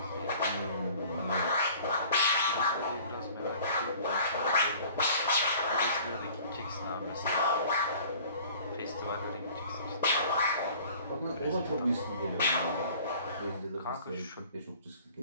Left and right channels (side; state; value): both; inverted; correlation -0.49